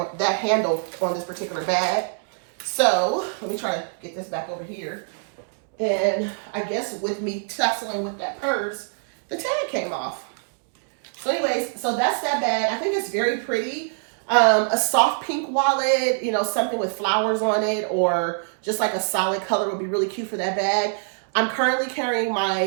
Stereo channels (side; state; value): left; silent; digital silence